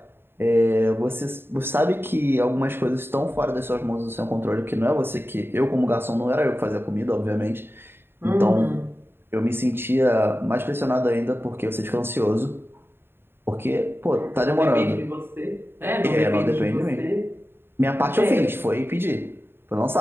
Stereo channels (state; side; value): late; left; 0.11 ms